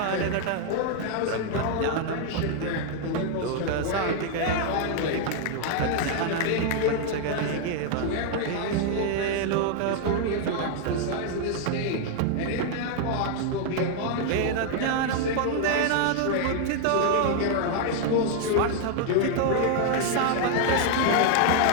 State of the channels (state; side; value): different; both; correlation 0.00